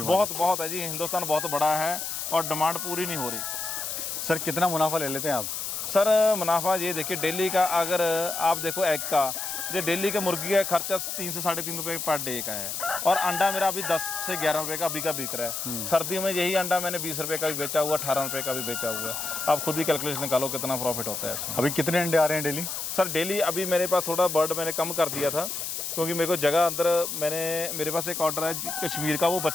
है जी। हिंदुस्तान बहुत बड़ा है और डिमांड पूरी नहीं हो रही। सर कितना मुनाफा ले लेते हैं आप? सर मुनाफा ये देखिए, डेली का अगर आप देखो एग का, जो डेली का मुर्गी का खर्चा 3 से 3.5 रुपये पर डे का है, और अंडा मेरा अभी 10 से 11 रुपये का अभी का बिक रहा है। सर्दियों में यही अंडा मैंने 20 रुपये का भी बेचा हुआ, 18 रुपये का भी बेचा हुआ है। आप खुद ही कैलकुलेशन निकालो कितना प्रॉफिट होता है इसमें। अभी कितने अंडे आ रहे हैं डेली? सर डेली अभी मेरे पास थोड़ा बर्ड मैंने कम कर दिया था, क्योंकि मेरे को जगह अंदर, मेरे पास एक ऑर्डर है कश्मीर का, वो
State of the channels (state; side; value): noise; left; hiss, 4 dB below the sound